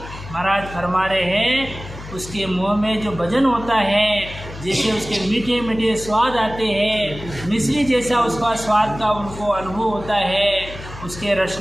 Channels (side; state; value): left; noise; hum, 13 dB below the sound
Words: महाराज फरमा रहे हैं उसके मुँह में जो भजन होता है, जैसे उसके मीठे मीठे स्वाद आते हैं, मिश्री जैसा उसका स्वाद का उनको अनुभव होता है। उसके